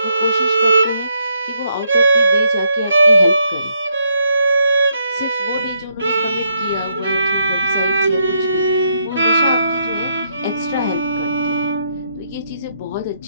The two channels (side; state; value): both; inverted; correlation -0.75